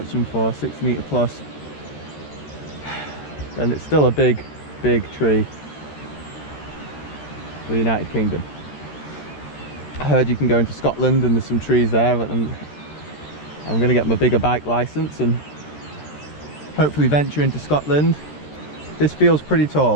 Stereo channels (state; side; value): late; right; 13 ms